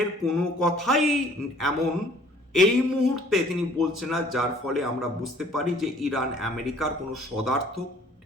কোনো কথাই এমন এই মুহূর্তে তিনি বলছেন না যার ফলে আমরা বুঝতে পারি যে ইরান আমেরিকার কোনো সদার্থক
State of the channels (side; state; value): both; normal; correlation 0.56